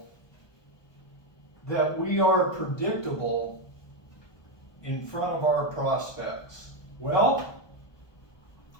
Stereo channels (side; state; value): right; late; 1.2 ms